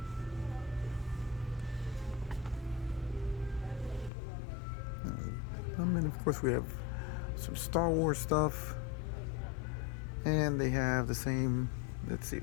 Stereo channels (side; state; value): right; drops out; at 4.1 s